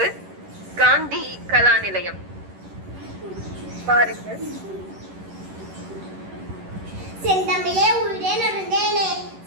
காந்தி கலா நிலையம். பாருங்கள். செந்தமிழே உயிரே நொறுந்தேனே,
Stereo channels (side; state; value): left; late; 11 ms